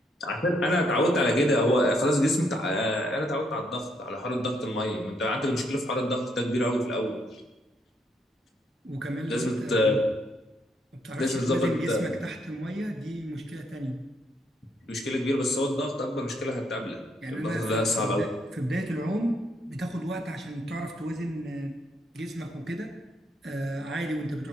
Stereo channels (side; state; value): both; normal; correlation 0.73